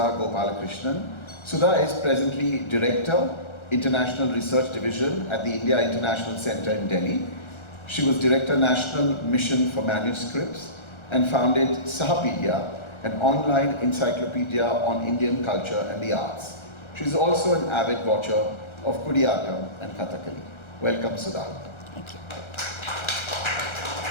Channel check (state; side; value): late; right; 1.3 ms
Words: Gopalakrishnan. Sudha is presently Director, International Research Division at the India International Center in Delhi. She was Director National Mission for Manuscripts and founded Sahapedia, an online encyclopedia on Indian culture and the arts. She is also an avid watcher of Kutiyattam and Kathakali. Welcome, Sudha. Thank you.